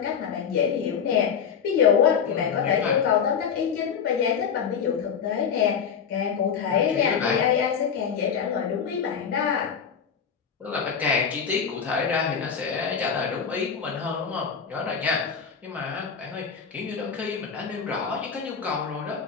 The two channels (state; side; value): quieter; right; 6.9 dB